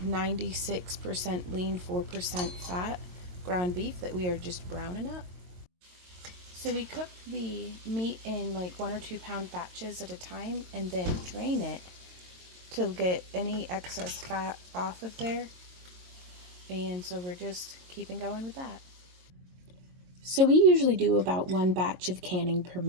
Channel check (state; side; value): late; left; 22 ms